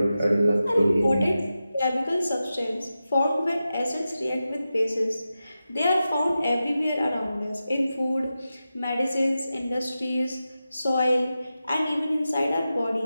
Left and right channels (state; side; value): inverted; both; correlation -0.92